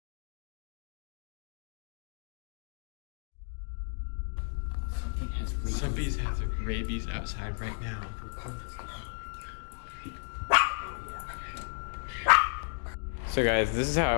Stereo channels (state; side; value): silent; right; digital silence